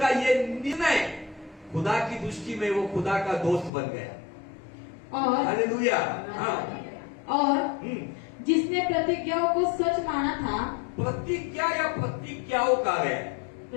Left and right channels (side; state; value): right; drops out; at 3.7 s